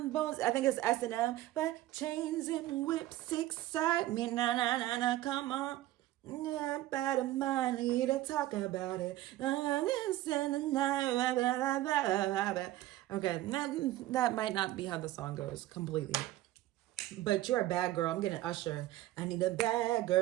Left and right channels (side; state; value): left; quieter; 15.4 dB